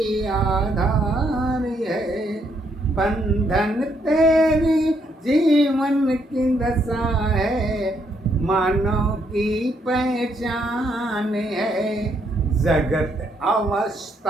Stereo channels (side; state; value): both; normal; correlation 0.73